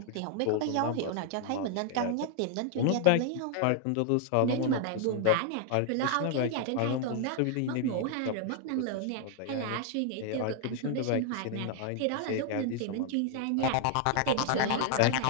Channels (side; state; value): both; different; correlation 0.00